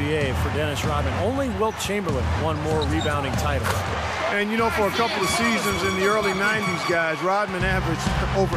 for Dennis Rodman. Only Wilt Chamberlain won more rebounding titles. And, you know, for a couple of seasons in the early 90s, guys, Rodman averaged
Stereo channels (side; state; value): both; identical; correlation 1.00